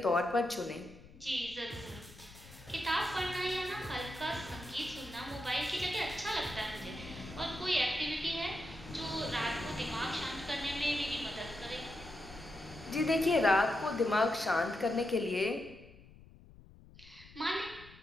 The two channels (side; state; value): left; noise; rumble, 21 dB below the sound